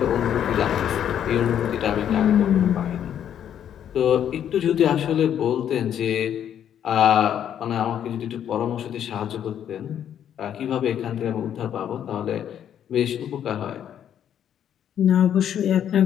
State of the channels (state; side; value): quieter; right; 9.7 dB